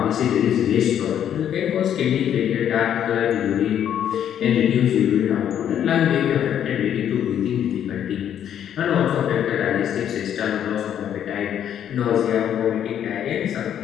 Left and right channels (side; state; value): right; quieter; 9.8 dB